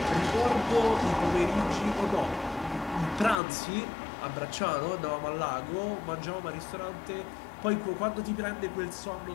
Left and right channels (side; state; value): right; drops out; at 3.4 s